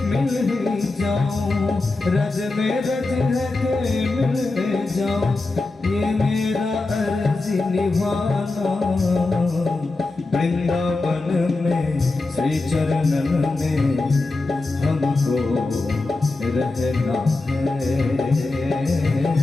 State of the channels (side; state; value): right; quieter; 3.3 dB